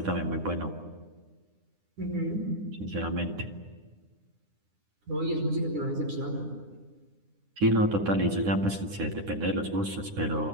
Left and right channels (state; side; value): late; left; 9.9 ms